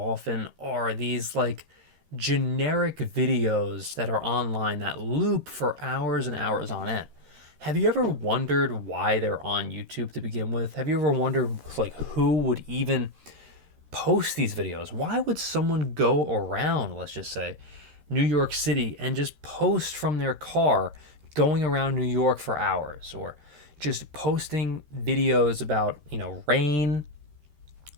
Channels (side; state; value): left; late; 13 ms